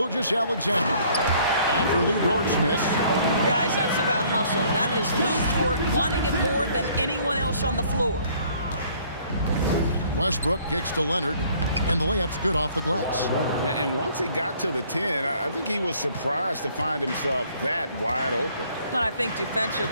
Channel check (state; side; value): inverted; both; correlation -0.60